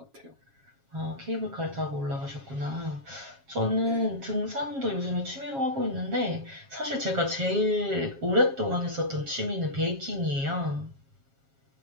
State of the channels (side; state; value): left; late; 7.4 ms